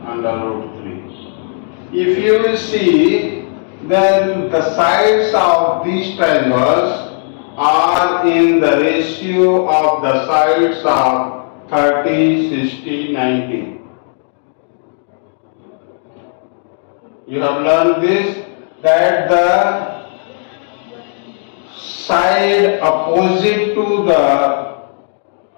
under root 3. If you will see, then the sides of these triangles are in the ratio of the sides of 30, 60, 90. You have learned this, that the side opposite to the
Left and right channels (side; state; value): right; silent; 64 dB below the other